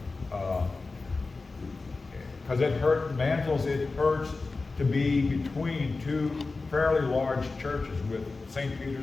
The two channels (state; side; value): quieter; right; 3.8 dB